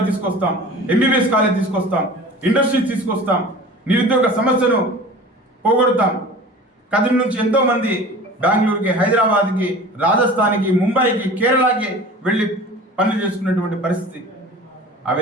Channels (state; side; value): normal; both; correlation 0.40